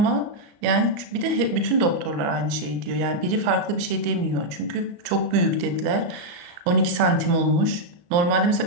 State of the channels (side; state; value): left; late; 34 ms